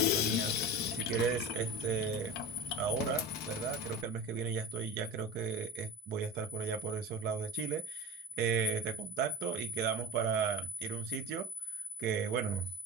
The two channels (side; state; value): both; normal; correlation 0.32